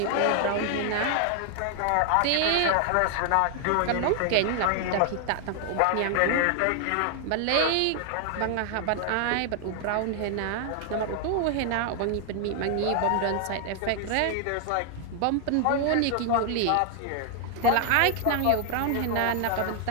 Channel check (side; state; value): both; different; correlation 0.00